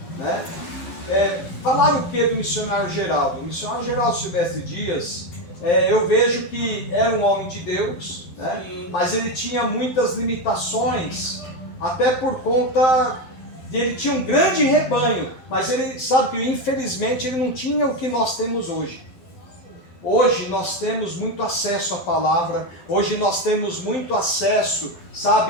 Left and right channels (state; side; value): late; right; 11 ms